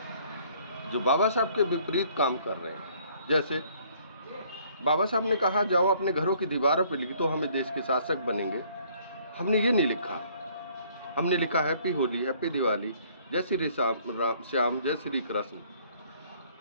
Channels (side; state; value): both; inverted; correlation -0.61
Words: जो बाबा साहब के विपरीत काम कर रहे हैं। जैसे बाबा साहब ने कहा जाओ अपने घरों की दीवारों पर लिख दो हमें देश के शासक बनेंगे। हमने ये नहीं लिखा, हमने लिखा हैप्पी होली, हैप्पी दिवाली, जय श्री श्याम, जय श्री कृष्ण,